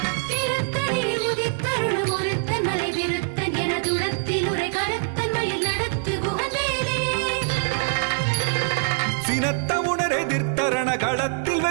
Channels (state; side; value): silent; left; digital silence